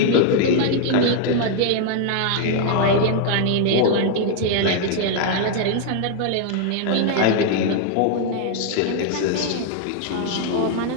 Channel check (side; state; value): both; different; correlation 0.00